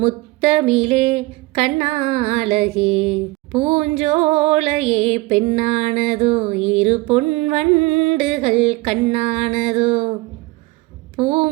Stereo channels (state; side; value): quieter; left; 21.5 dB